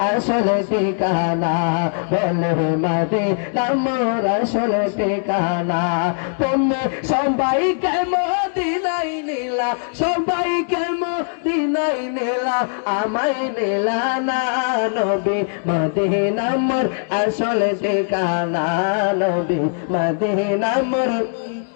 আসল ঠিকানা। বলে মদিনা মোর আসল ঠিকানা। তুমি সবাইকে মদিনায় নিলা, সবাইকে মদিনায় নিলা, আমায় নিলা না নবী। মদিনা মোর আসল ঠিকানা, নবী মদিনা মোর।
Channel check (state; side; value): silent; right; digital silence